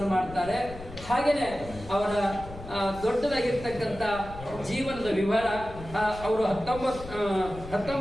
ಮಾಡ್ತಾರೆ. ಹಾಗೇನೆ ಅವರ ದೊಡ್ಡದಾಗಿರ್ತಕ್ಕಂಥ ಜೀವನದ ವಿವರ. ಅವರು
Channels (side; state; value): left; noise; rumble, 14 dB below the sound